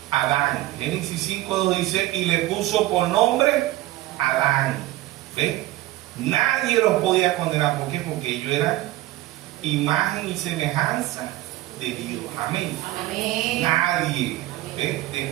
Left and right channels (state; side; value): quieter; left; 16.5 dB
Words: Adán. Génesis 5:2 dice: y le puso por nombre Adán. ¿Ve? Nadie los podía condenar. ¿Por qué? Porque ellos eran imagen y semejanza de Dios. Amén. Amén. Nadie. ¿Ve?